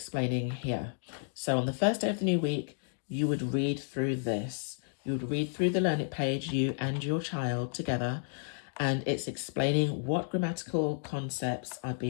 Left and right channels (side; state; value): right; silent; digital silence